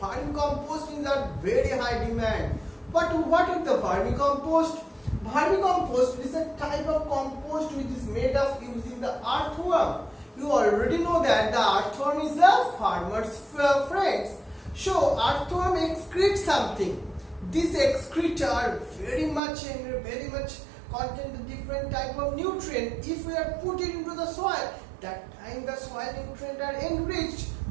is a very high demand. But what is the vermicompost? Vermicompost is a type of compost which is made of using the earthworm. You already know that the earthworm is a farmer's friend. So earthworm excretes something. These excrete are very much contain the different type of nutrient. If we are put it into the soil, that time the soil nutrients are enriched.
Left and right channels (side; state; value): left; drops out; at 19.4 s